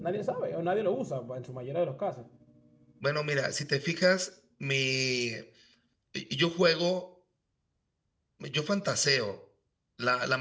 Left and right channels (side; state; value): both; identical; correlation 1.00